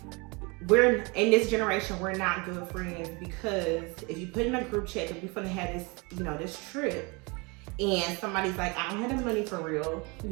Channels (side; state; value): left; quieter; 28.5 dB